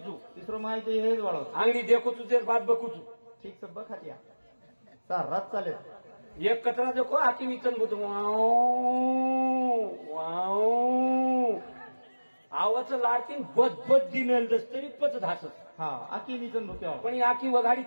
चू तिसरो माहिती हेच वाळो अंगडी देखो तुझे बात बकू चू ठीक सब बखातिया रात चालेल एक कचरा देखो आकी विचन बुत वाव आवाचं लाडकीन बद दिनेल दस तरी पच धासत हा आकी निचन भुक्या पण ही आकी वगाडी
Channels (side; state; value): both; inverted; correlation -1.00